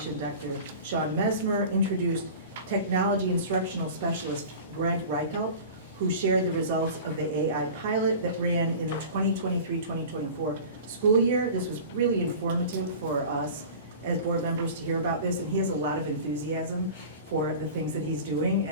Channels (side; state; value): both; inverted; correlation -0.38